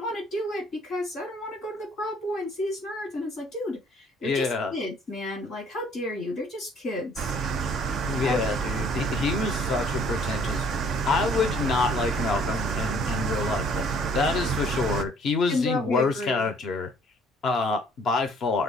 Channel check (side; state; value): both; normal; correlation 0.58